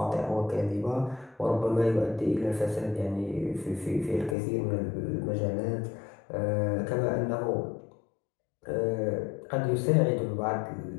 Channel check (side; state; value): right; drops out; at 4.4 s